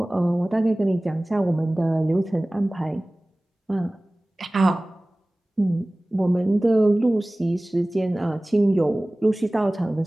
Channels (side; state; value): both; normal; correlation 0.98